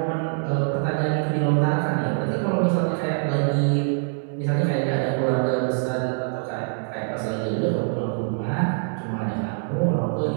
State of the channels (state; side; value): silent; left; 61 dB below the other